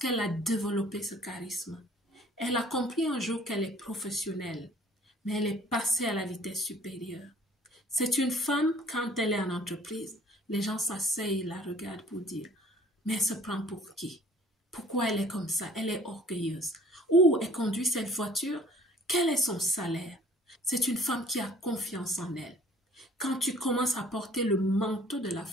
a développé ce charisme. Elle a compris un jour qu'elle est professionnelle, mais elle est passée à la vitesse supérieure. C'est une femme, quand elle est en entreprise, les gens s'asseyent et la regardent pour dire « Mais elle se prend pour qui? Pourquoi elle est comme ça? Elle est orgueilleuse. Ou elle conduit cette voiture? Quel est son salaire? » C'est une femme qui a confiance en elle. Quand tu commences à porter le manteau de la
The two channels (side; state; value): both; normal; correlation 0.53